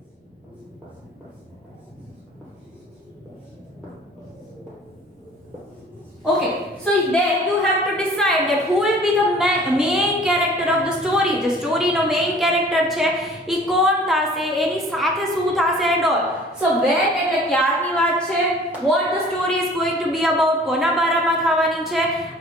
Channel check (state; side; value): normal; both; correlation 0.50